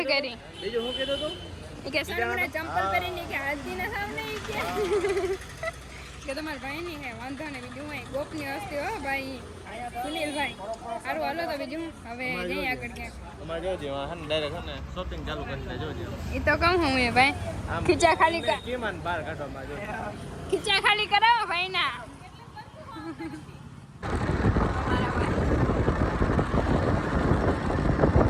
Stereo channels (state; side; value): identical; both; correlation 1.00